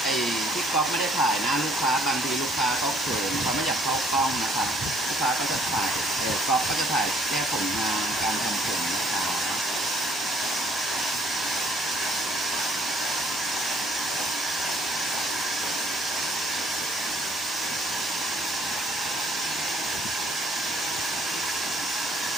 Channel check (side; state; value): both; normal; correlation 0.63